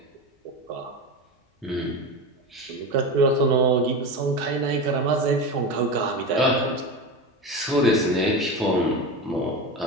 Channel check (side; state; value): both; normal; correlation 0.23